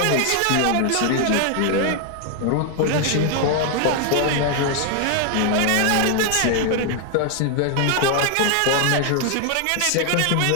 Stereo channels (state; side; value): different; both; correlation 0.00